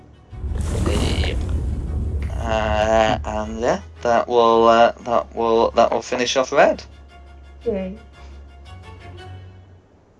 And yeah, that will finish off red. Okay.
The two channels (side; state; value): both; identical; correlation 1.00